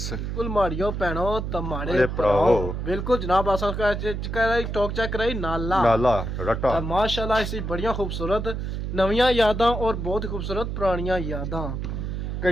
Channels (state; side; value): noise; right; hum, 4 dB below the sound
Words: बिल्कुल माड़ियो भैनो तमाड़े भराओ बिल्कुल जनाब अस टॉक चेक कराई नाला रट्टा माशाल्लाह इसी बड़ियां खूबसूरत नवियां यादां और बहुत खूबसूरत पुरानियां यादां